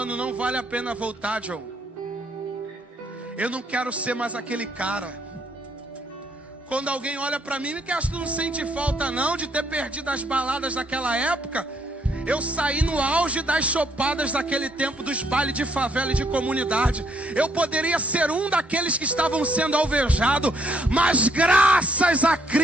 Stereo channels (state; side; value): normal; both; correlation 0.71